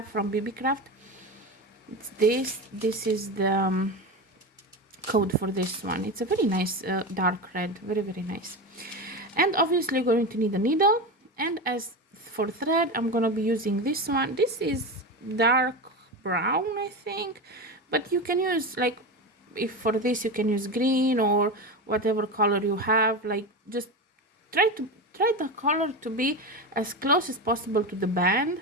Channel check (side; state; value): both; normal; correlation 0.21